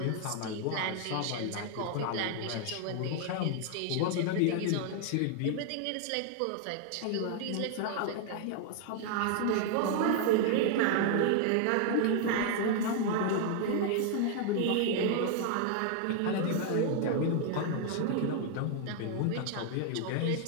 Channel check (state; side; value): different; both; correlation 0.00